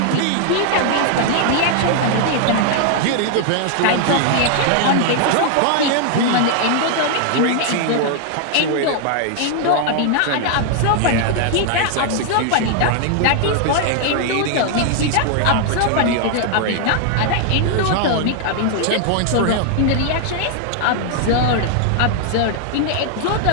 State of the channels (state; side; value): different; both; correlation 0.00